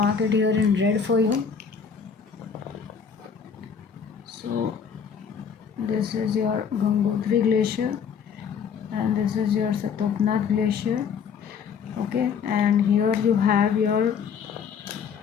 it here in red for you. So this is your Gangotri Glacier and this is your Satopnath Glacier. Okay, and here you have your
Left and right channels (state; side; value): quieter; right; 6.7 dB